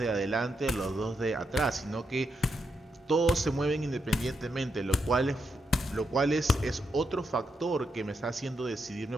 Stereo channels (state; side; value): normal; both; correlation 0.82